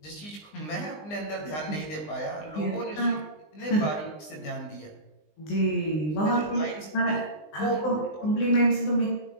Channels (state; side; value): late; right; 20 ms